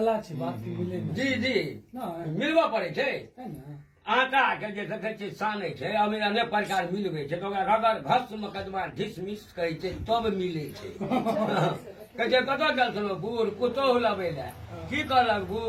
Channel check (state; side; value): identical; both; correlation 1.00